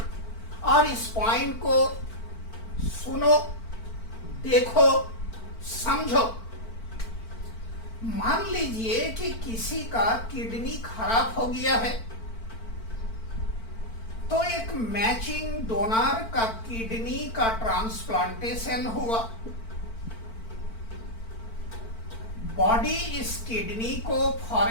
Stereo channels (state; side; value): late; right; 4.5 ms